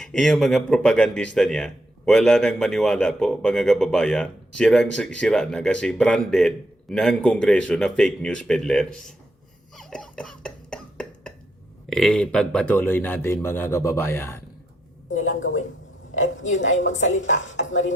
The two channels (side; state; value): both; normal; correlation 0.78